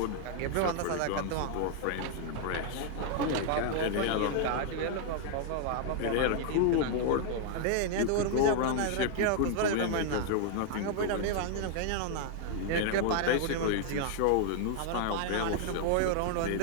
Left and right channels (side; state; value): both; different; correlation 0.00